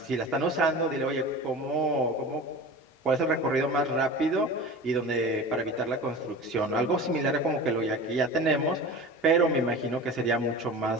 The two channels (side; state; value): both; normal; correlation 0.34